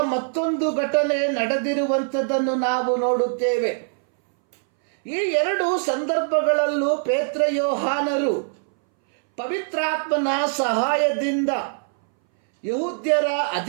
ಮತ್ತೊಂದು ಘಟನೆ ನಡೆದಿರುವಂಥದ್ದನ್ನು ನಾವು ನೋಡುತ್ತೇವೆ. ಈ ಎರಡು ಸಂದರ್ಭಗಳಲ್ಲೂ ಪೇತ್ರ ಯೋಹಾನರು ಪವಿತ್ರಾತ್ಮನ ಸಹಾಯದಿಂದ ಯಹೂದ್ಯರ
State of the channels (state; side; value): silent; left; 62 dB below the other